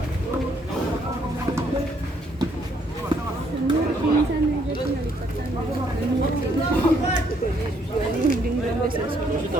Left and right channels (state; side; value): normal; both; correlation 0.69